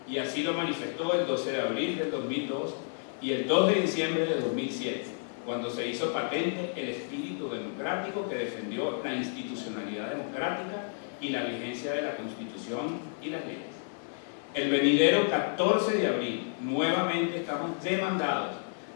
y así lo manifestó el 12 de abril del 2002 y el 2 de diciembre de 2007, cuando se hizo patente el espíritu democrático que defendió la institucionalidad democrática y la vigencia de la Constitución y las leyes. El venidero 14 de abril, nuevamente estamos demandados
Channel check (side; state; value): right; silent; 57 dB below the other